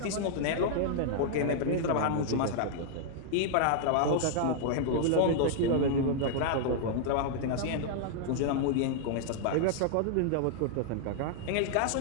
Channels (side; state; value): both; different; correlation -0.01